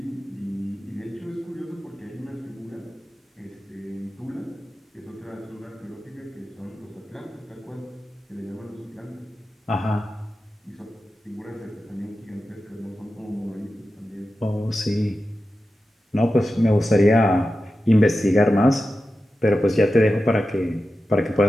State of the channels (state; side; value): normal; both; correlation 0.92